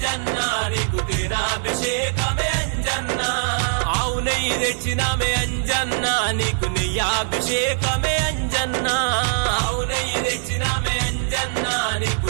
నీకు తేనాభిషేకమే అంజన్న ఆవు నెయ్యి తెచ్చినామే అంజన్న నీకు నెయ్యాభిషేకమే అంజన్న ఆవు నెయ్యి తెచ్చినామే అంజన్న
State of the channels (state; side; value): silent; left; digital silence